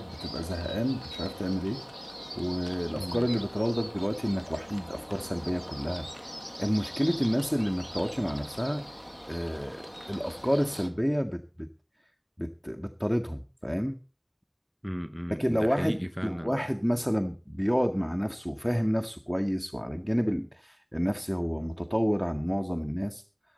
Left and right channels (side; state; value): both; identical; correlation 1.00